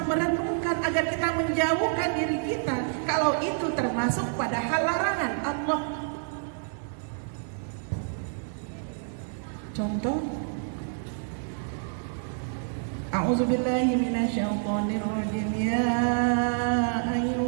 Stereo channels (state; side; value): silent; left; digital silence